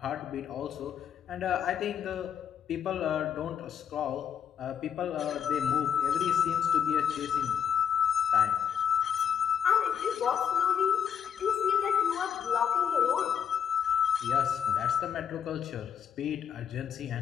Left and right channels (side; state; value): right; quieter; 7.9 dB